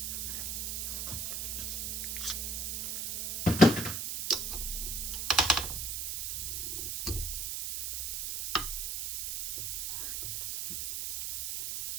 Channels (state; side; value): noise; right; hiss, 2 dB below the sound